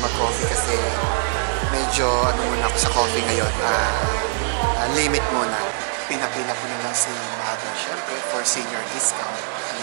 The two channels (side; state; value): left; silent; 64 dB below the other